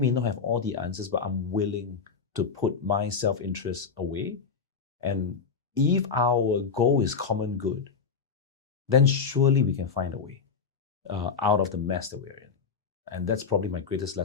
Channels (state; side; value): quieter; right; 5.6 dB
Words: not have all the answers, but I'm willing to put my self-interest away. And if our goal is common good, then surely we can find a way out of the mess that we're in. And that's probably my greatest